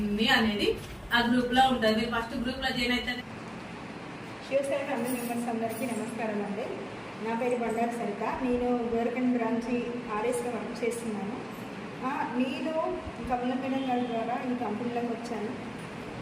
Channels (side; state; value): both; identical; correlation 1.00